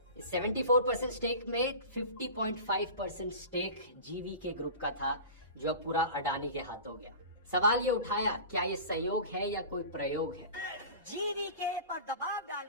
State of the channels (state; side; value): inverted; both; correlation -0.35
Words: इस 74% स्टेक में 50.5% स्टेक जीवीके ग्रुप का था, जो पूरा अडानी के हाथों गया। सवाल ये उठाया, क्या ये संयोग है या कोई प्रयोग है? जीवीके पर दबाव